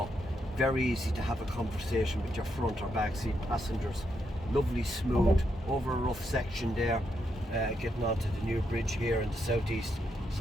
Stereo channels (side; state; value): both; normal; correlation 0.80